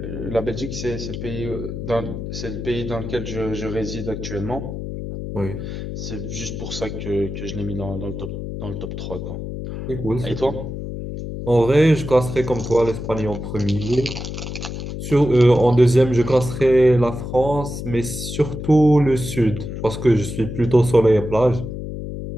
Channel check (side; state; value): left; noise; hum, 7 dB below the sound